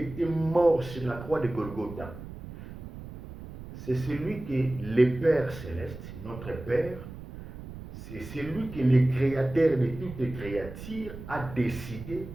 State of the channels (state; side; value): noise; right; rumble, 13 dB below the sound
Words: morte sur la croix de Golgotha, c'est celui que le Père Céleste, notre Père, c'est celui que le créateur de toute créature a décidé,